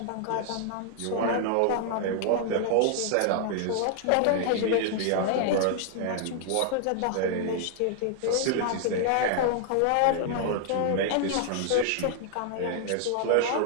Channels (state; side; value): different; both; correlation -0.01